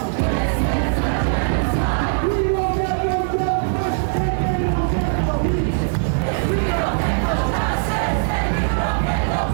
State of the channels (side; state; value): left; silent; digital silence